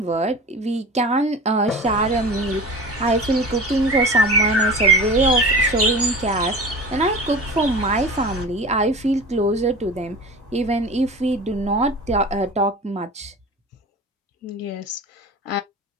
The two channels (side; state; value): both; normal; correlation 0.34